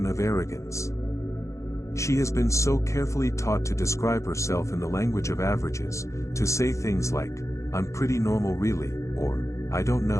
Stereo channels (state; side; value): late; right; 0.15 ms